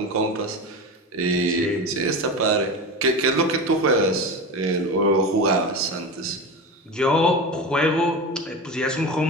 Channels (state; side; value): normal; both; correlation 0.25